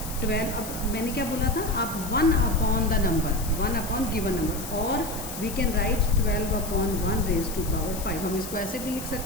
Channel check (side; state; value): left; noise; hiss, 10 dB below the sound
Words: 12. अब मैंने क्या बोला था, आप 1 upon the number, 1 upon given number, और we can write 12 upon 1 raise to power 5. हम इसको ऐसे भी लिख